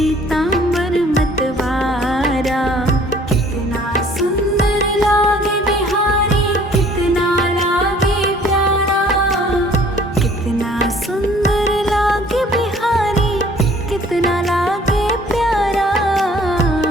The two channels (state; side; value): normal; both; correlation 0.55